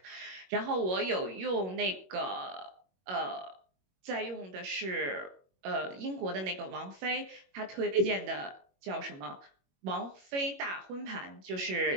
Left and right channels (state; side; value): late; left; 21 ms